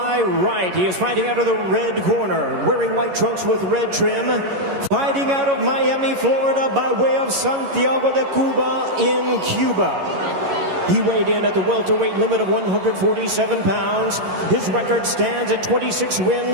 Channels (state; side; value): late; left; 11 ms